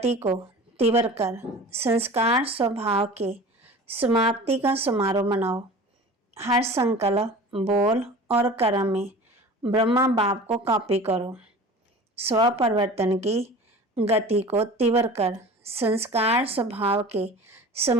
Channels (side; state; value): both; normal; correlation 0.39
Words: को तीव्र कर संस्कार स्वभाव के समाप्ति का समारोह मनाओ। हर संकल्प, बोल और कर्म में ब्रह्मा बाप को कॉपी करो। स्व परिवर्तन की गति को तीव्र कर संस्कार स्वभाव के